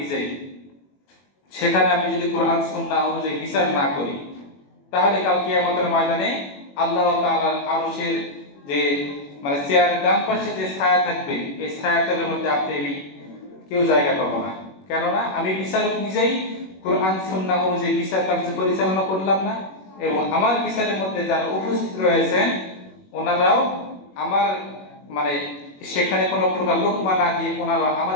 সেখানে আমি যদি কোরআন সুন্নাহ অনুযায়ী বিচার না করি, তাহলে কাল কিয়ামতের ময়দানে আল্লাহ তাআলার আরশের যে চেয়ারের ডান পাশে যে ছায়া থাকবে, এই ছায়াতলের মধ্যে আপনি কেউ জায়গা পাবো না। কেননা আমি বিচারক নিজেই কোরআন সুন্নাহ অনুযায়ী বিচার কার্য পরিচালনা করলাম না, এবং আমার বিচারের মধ্যে যারা উপস্থিত রয়েছেন ওনারাও আমার সেখানে কোনো প্রকার লোকমা না দিয়ে ওনারা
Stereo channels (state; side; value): late; right; 21 ms